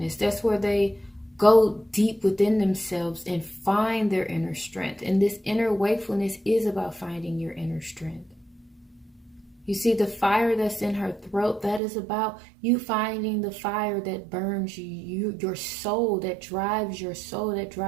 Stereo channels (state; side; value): drops out; left; at 11.8 s